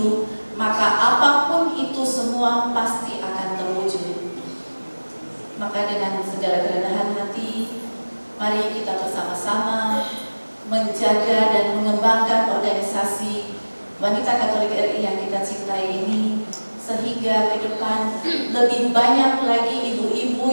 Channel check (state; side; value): inverted; both; correlation -1.00